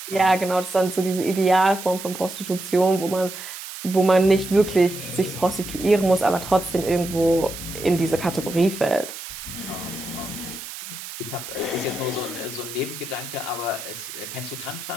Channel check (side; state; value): right; noise; hiss, 11 dB below the sound